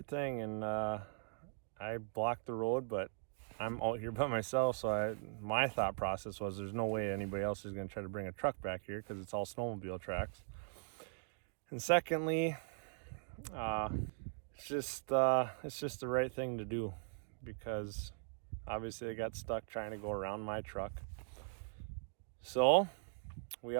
thing. And I blocked the road, but I'm out here by myself, so my thought process was there's no way anybody else is going to try to bring a truck back here because it's all snowmobile tracks. And secondly, it's just the right thing to do, because obviously they got stuck trying to go around my truck. So we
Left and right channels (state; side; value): silent; left; digital silence